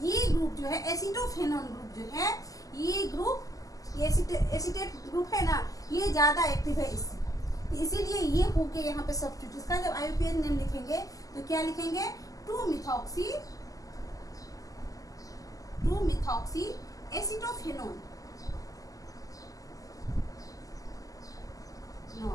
ग्रुप जो है एसिटोफेनॉन ग्रुप जो है, ये ग्रुप एसिटेट ग्रुप है ना, ये ज्यादा एक्टिव है इससे, तो इसीलिए ये होके यहाँ पे सब्स्टिट्यूट। इसका जब IUPAC नेम लिखेंगे तो क्या लिखेंगे, 2-मिथॉक्सी एसिटोफेनॉन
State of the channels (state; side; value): late; right; 0.17 ms